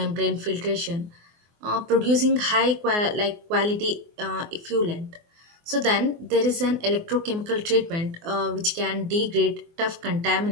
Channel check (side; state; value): left; late; 24 ms